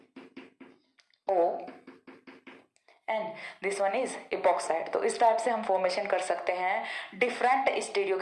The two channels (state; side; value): identical; both; correlation 1.00